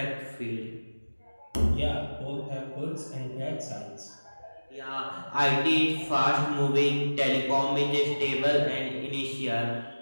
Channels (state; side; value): inverted; both; correlation -1.00